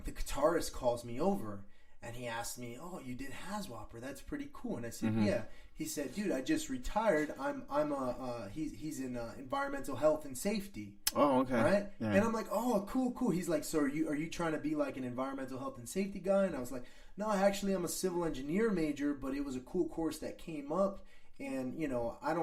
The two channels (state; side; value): identical; both; correlation 1.00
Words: the guitarist calls me over and he asked me, "Oh, you did HAZWOPER? That's pretty cool." And I said, "Yeah." He said, "Dude, I just retired. He's in environmental health and safety." Oh, okay. Right? Yeah. And I'm like, "Oh, cool." He's like, "So are you trying to be like an environmental health and safety guy?" And I was like, "No, actually, I'm a civil engineer major, but it was a cool course that came up, and you know, I